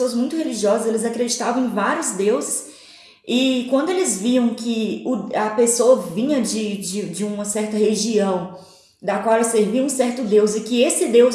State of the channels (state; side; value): identical; both; correlation 1.00